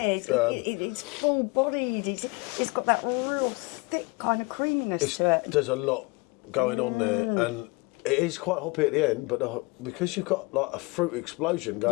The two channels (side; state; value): right; quieter; 27.0 dB